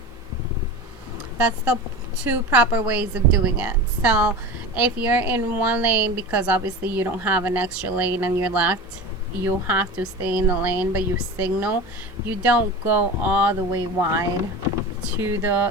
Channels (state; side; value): normal; both; correlation 0.31